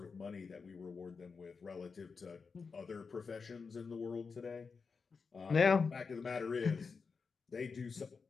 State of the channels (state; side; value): quieter; right; 5.1 dB